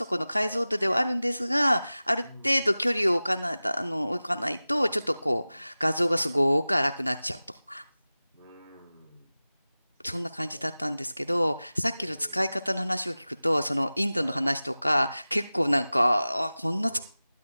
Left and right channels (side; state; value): both; inverted; correlation -0.97